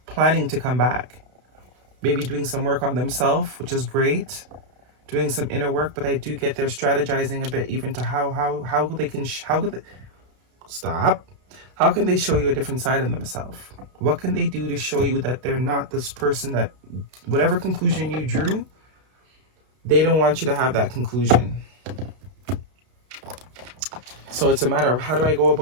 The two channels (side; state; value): left; late; 32 ms